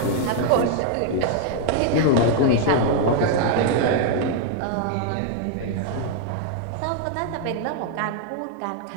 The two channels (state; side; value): different; both; correlation 0.00